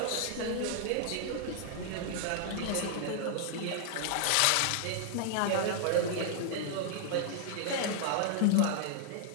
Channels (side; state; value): both; different; correlation 0.00